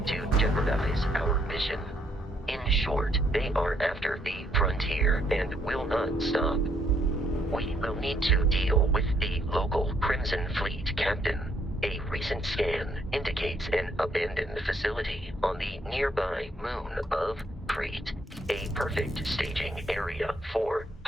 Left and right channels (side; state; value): both; normal; correlation 0.70